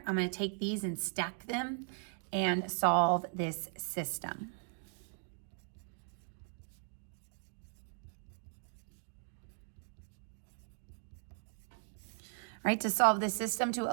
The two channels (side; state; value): left; silent; 52 dB below the other